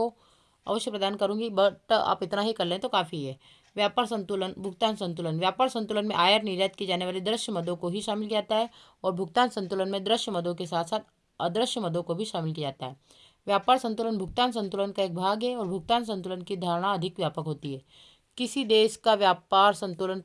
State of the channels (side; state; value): both; identical; correlation 1.00